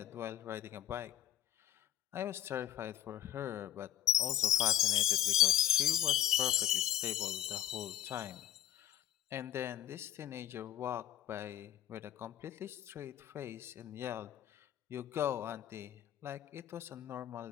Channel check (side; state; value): right; quieter; 11.9 dB